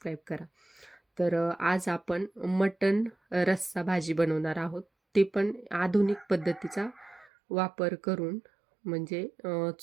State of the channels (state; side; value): drops out; left; at 7.3 s